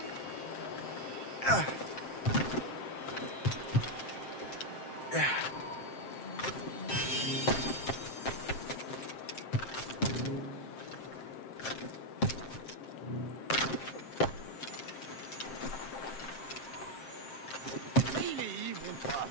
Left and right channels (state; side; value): late; right; 7.6 ms